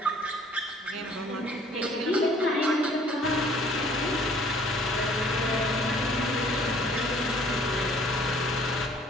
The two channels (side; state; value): both; normal; correlation 0.57